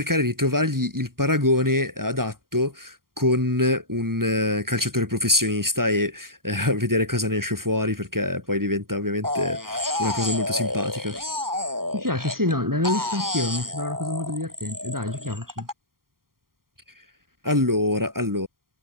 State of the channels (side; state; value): left; late; 0.92 ms